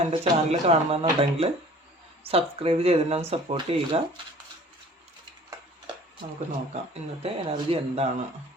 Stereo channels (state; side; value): normal; both; correlation 0.49